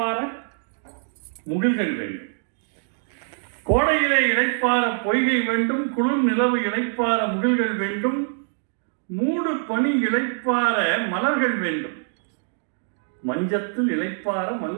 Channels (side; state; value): left; silent; digital silence